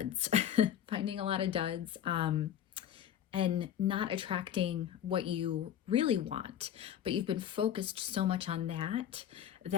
finding a lot of duds, and not attracting what you really want. But you've been focused so much on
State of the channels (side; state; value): right; quieter; 10.2 dB